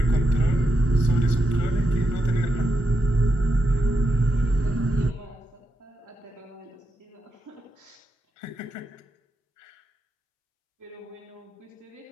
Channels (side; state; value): both; normal; correlation 0.85